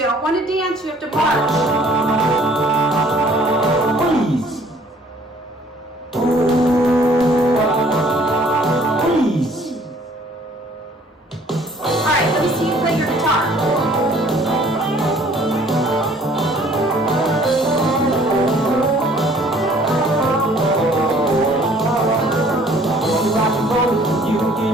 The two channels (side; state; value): both; normal; correlation 0.57